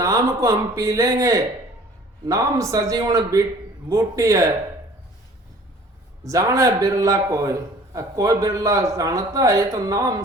को हम पी लेंगे, नाम सजीवन बूटी है, जाने बिरला कोई बिरला जानता है। तो नाम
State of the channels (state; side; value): normal; both; correlation 0.50